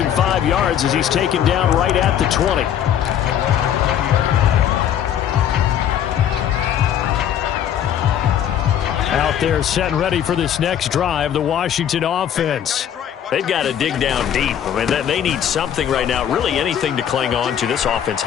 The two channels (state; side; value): quieter; right; 9.8 dB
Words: him 5 yards as he's taken down right at the 20. Out there set and ready for this next drive, the Washington offense. They've got to dig down deep. I mean, they need something right now, really anything to cling on to. This offense